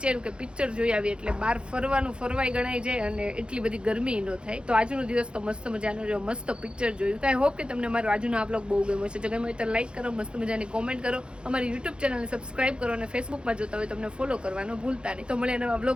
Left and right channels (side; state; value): left; late; 0.054 ms